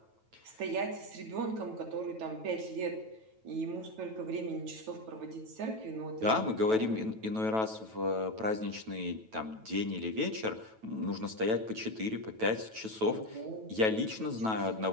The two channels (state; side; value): late; left; 9.1 ms